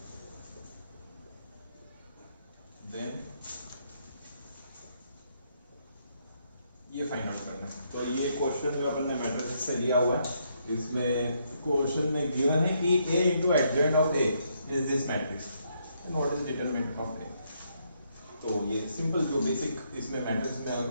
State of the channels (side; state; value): both; inverted; correlation -0.75